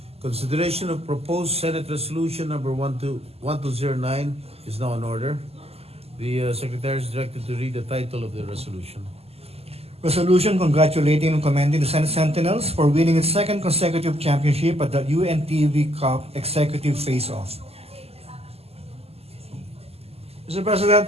Consideration of proposed Senate Resolution number 1209 is now in order. The Secretary is directed to read the title of the resolution. Resolution congratulating and commending the Senate Sentinels for winning its second consecutive championship at the UNTV Cup Executive Face-Off. Mr.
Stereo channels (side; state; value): left; late; 0.29 ms